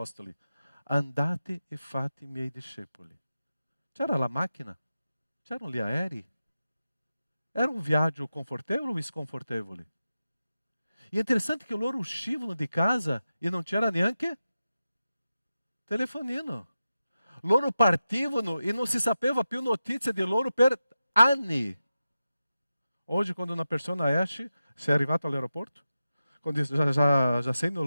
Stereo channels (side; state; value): both; inverted; correlation -0.92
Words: andate e fate miei discepoli. C'era la macchina? C'erano gli aerei? Era un viaggio confortevole o sconfortevole? E è interessante che loro uscivano di casa e non c'era neanche telefonino. Loro partivano e non si sapeva più notizia di loro per anni. Oggi quando una persona esce, sei arrivato all'aeroporto, quando já sei